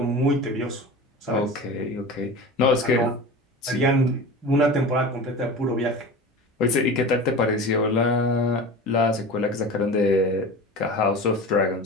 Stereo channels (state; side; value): normal; both; correlation 0.33